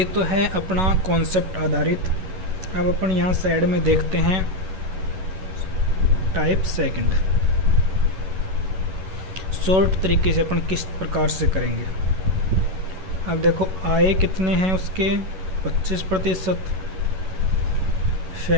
तो है अपना कॉन्सेप्ट आधारित। अब अपन यहाँ साइड में देखते हैं टाइप सेकंड। शॉर्ट तरीके से अपन किस प्रकार से करेंगे? अब देखो आए कितने हैं उसके? 25%।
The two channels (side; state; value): left; late; 11 ms